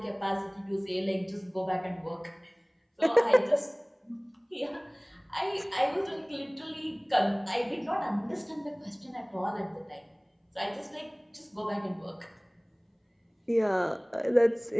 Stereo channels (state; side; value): identical; both; correlation 1.00